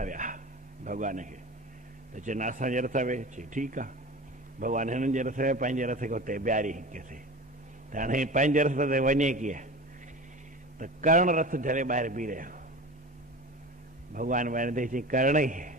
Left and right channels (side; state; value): both; normal; correlation 0.33